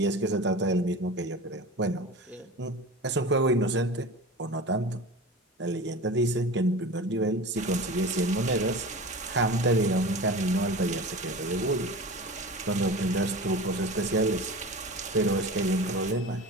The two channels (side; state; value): both; normal; correlation 0.33